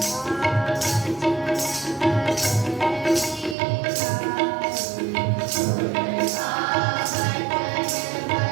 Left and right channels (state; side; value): drops out; left; at 3.6 s